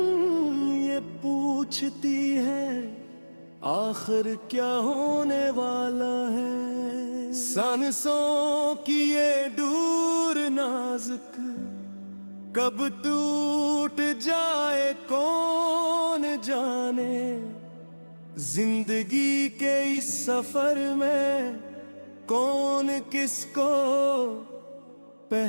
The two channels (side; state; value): both; inverted; correlation -1.00